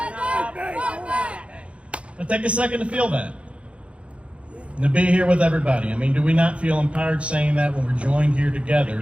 up and fight back. Now take a second to feel that. And to be here with everybody. I mean, do we not feel empowered saying that when we're joined here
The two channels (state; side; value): late; left; 0.061 ms